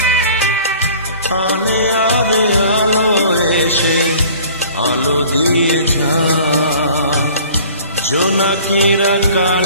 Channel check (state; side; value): inverted; both; correlation -0.48